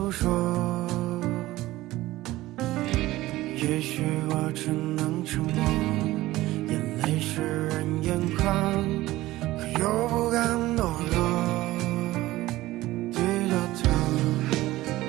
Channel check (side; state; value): left; quieter; 17.2 dB